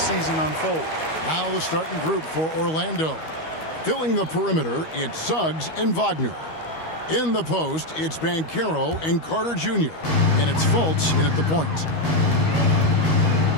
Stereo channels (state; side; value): late; right; 13 ms